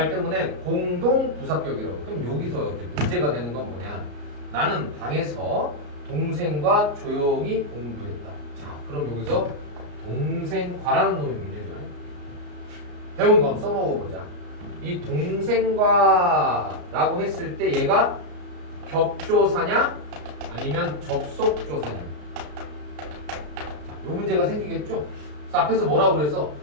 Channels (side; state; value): left; late; 34 ms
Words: 때문에 공동부사격이라고. 그럼 여기서 이제 문제가 되는 건 뭐냐? 나는 방에서 동생과 조용히 공부했다. 자, 그럼 여기서 동생과라는 놈이 문제죠. 배운 거 한번 써먹어보자. 이 동생과라고 했을 때 얘가 격조사냐 아니면 접속조사냐? 이 문제가 생기겠죠? 그래서 앞에서 뭐라고 그래서